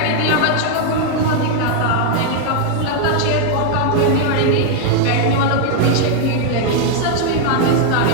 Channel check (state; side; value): different; both; correlation 0.00